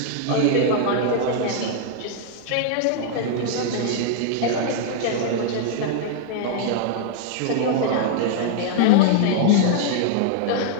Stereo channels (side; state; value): both; different; correlation -0.01